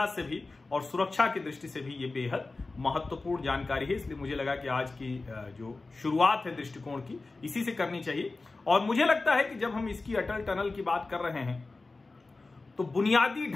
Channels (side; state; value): right; quieter; 3.5 dB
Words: से भी और सुरक्षा की दृष्टि से भी ये बेहद महत्वपूर्ण जानकारी है। इसलिए मुझे लगा कि आज की जो शुरुआत है दृष्टिकोण की, इसी से करनी चाहिए। और मुझे लगता है कि जब हम इसकी अटल टनल की बात कर रहे हैं, तो बुनियादी